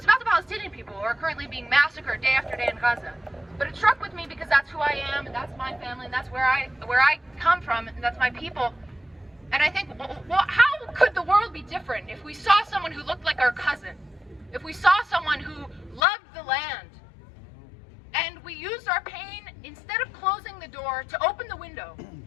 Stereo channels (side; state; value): right; drops out; at 16.0 s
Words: about the Palestinian people who are currently being massacred day after day in Gaza. But it struck with me because that's who I am, and that's my family, and that's where I come from, and that's my people. And I think, well, how could the world be different if we saw someone who looked like our cousin? If we saw someone who loved the land? And we used our pain, instead of closing the door, to open the window.